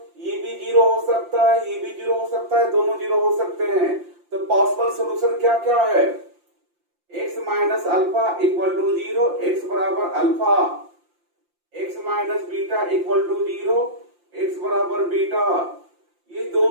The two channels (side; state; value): left; late; 5.8 ms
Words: ये भी 0 हो सकता है, ये भी 0 हो सकता है, दोनों 0 हो सकते हैं। तो पॉसिबल सॉल्यूशन क्या क्या है? x minus alpha equal to 0, x बराबर alpha, x minus beta equal to 0, x बराबर बीटा। ये